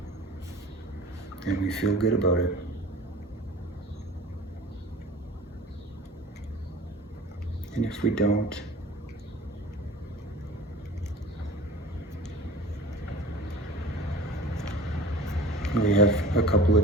and we feel good about it. And if we don't, we have a couple of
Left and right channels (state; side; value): normal; both; correlation 0.42